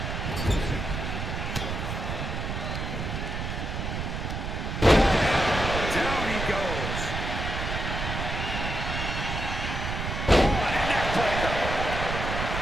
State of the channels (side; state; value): right; noise; rumble, 3 dB below the sound